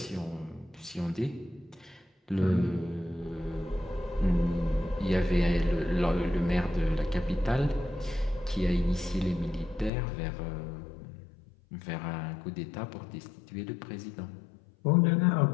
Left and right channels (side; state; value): right; drops out; at 9.9 s